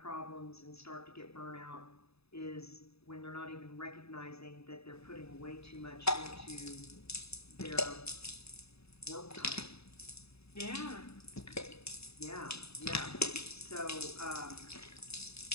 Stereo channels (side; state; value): right; late; 0.79 ms